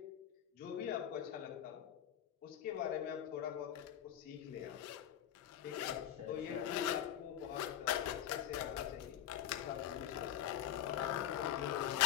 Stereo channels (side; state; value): right; quieter; 10.8 dB